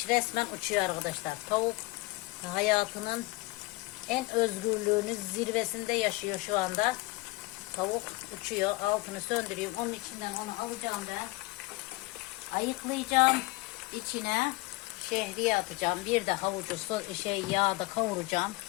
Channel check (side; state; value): right; quieter; 21.7 dB